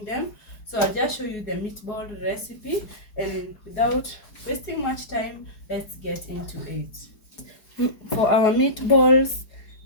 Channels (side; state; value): right; late; 4.8 ms